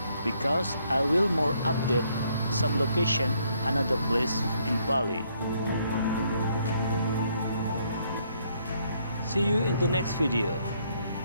because I will more update some location, another place in Bali. See you in the next video.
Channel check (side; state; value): both; inverted; correlation -0.70